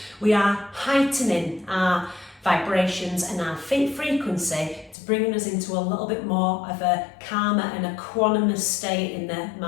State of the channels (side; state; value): right; drops out; at 5.0 s